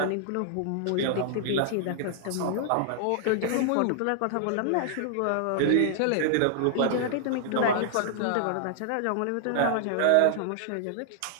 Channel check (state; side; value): different; both; correlation -0.01